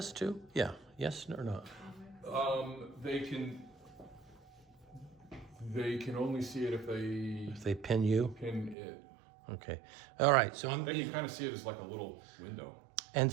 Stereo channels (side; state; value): left; drops out; at 8.8 s